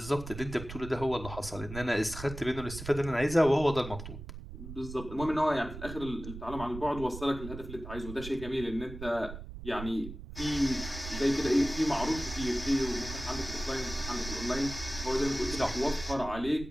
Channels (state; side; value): noise; right; rumble, 11 dB below the sound